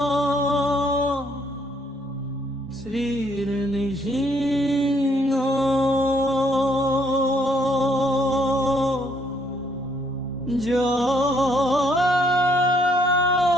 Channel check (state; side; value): normal; both; correlation 0.69